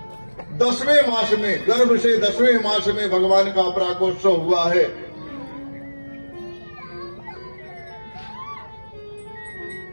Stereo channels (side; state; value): both; inverted; correlation -1.00